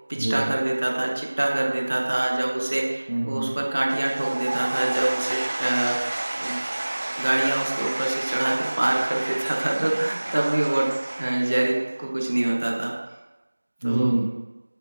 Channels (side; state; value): both; inverted; correlation -1.00